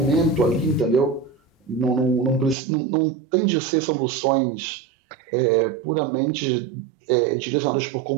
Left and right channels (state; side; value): drops out; left; at 2.6 s